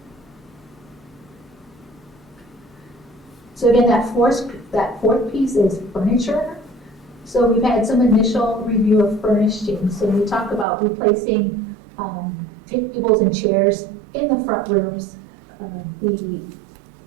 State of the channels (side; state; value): left; drops out; at 10.7 s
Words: So again, that fourth piece is furniture. So we've had some initial review of furnishings. So we talk about replacing tables and chairs in the front rooms.